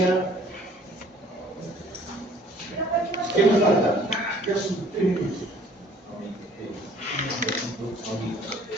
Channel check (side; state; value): both; normal; correlation 0.55